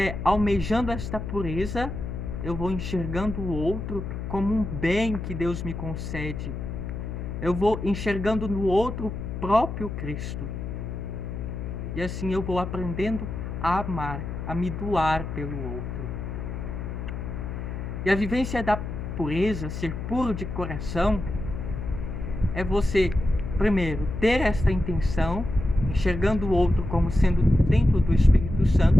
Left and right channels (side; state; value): left; noise; hum, 6 dB below the sound